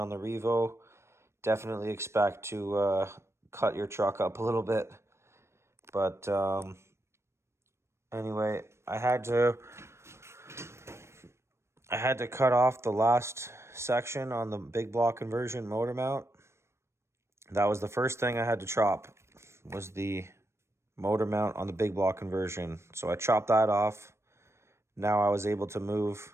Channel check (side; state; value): left; late; 0.13 ms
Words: the Revo, definitely expect to cut your truck up a little bit. But anyway, I had to cut off the last section on the big block conversion motor mount. That was the first thing I had to chop, was the motor mount on the big block conversion. So I chopped that off. Now I was able to